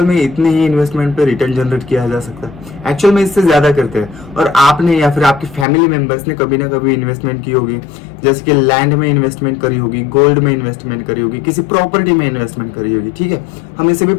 में इतने ही इन्वेस्टमेंट पे रिटर्न जनरेट किया जा सकता है? एक्चुअल में इससे ज्यादा करते हैं। और आपने या फिर आपकी फैमिली मेंबर्स ने कभी ना कभी इन्वेस्टमेंट की होगी, जैसे कि लैंड में इन्वेस्टमेंट करी होगी, गोल्ड में इन्वेस्टमेंट करी होगी, किसी प्रॉपर्टी में इन्वेस्टमेंट करी होगी, ठीक है। हम इसे भी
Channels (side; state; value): right; drops out; at 5.7 s